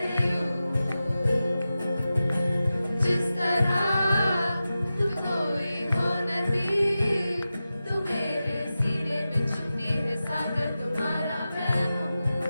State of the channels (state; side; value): inverted; both; correlation -0.93